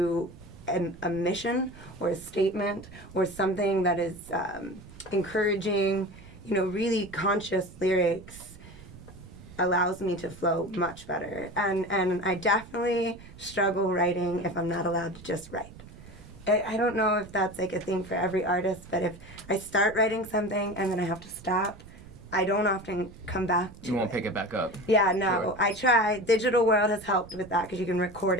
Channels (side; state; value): right; noise; rumble, 18 dB below the sound